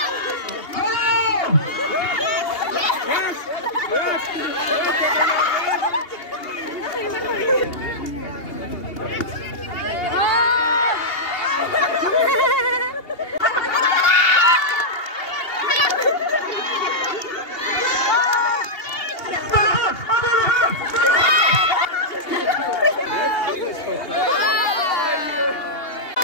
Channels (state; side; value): late; right; 2.8 ms